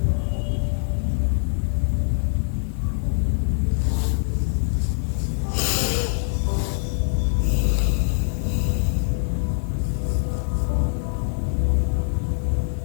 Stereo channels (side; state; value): right; silent; digital silence